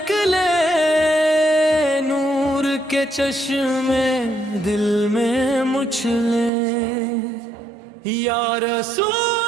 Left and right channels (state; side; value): drops out; left; at 6.5 s